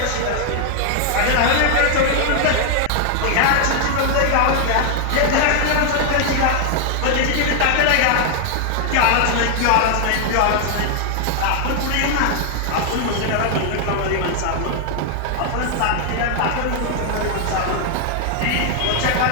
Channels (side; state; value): both; different; correlation 0.00